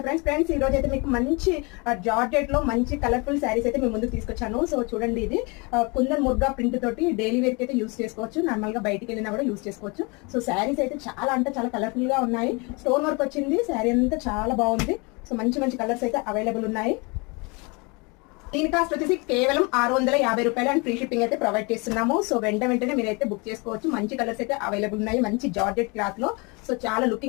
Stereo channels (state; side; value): quieter; right; 29.1 dB